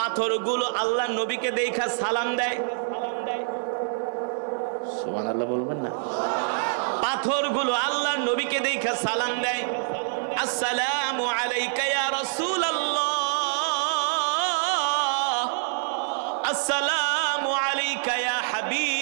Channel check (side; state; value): left; silent; 55 dB below the other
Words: আল্লাহর নবীকে দেখা সালাম দেয়। সুবহানাল্লাহ বলবেন না? পাথরগুলো আল্লাহর নবীকে দেখা সালাম দেয়, আসসালামু আলাইকা ইয়া রাসূলুল্লাহ, আসসালামু আলাইকা ইয়া